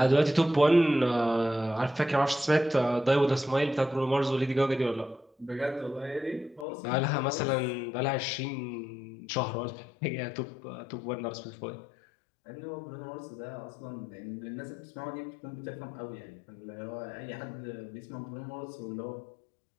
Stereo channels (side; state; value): right; drops out; at 6.7 s